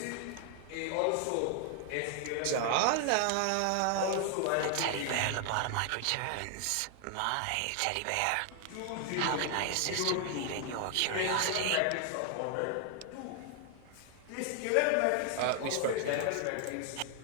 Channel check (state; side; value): different; both; correlation 0.00